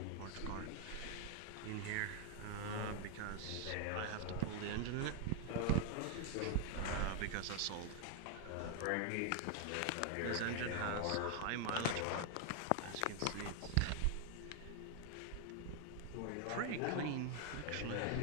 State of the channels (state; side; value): different; both; correlation 0.01